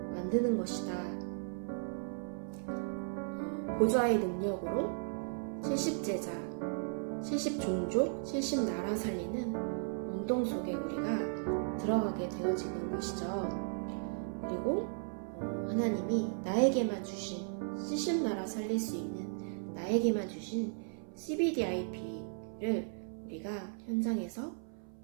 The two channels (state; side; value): silent; left; 54 dB below the other